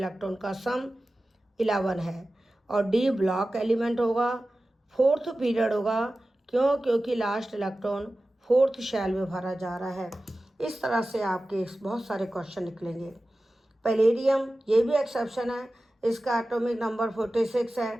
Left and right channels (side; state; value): both; normal; correlation 0.95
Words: का सम 11 है। और डी ब्लॉक एलिमेंट होगा, फोर्थ पीरियड होगा, क्योंकि लास्ट इलेक्ट्रॉन फोर्थ शेल में भरा जा रहा है। इस तरह से आपके बहुत सारे क्वेश्चन निकलेंगे। पैलेडियम ये भी एक्सेप्शन है, इसका एटॉमिक नंबर 46